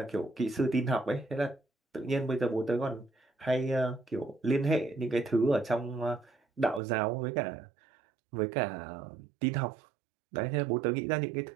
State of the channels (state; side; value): drops out; left; at 6.8 s